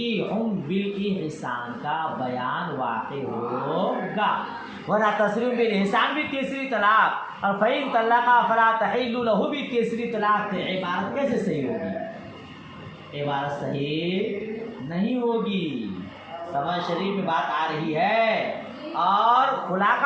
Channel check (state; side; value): identical; both; correlation 1.00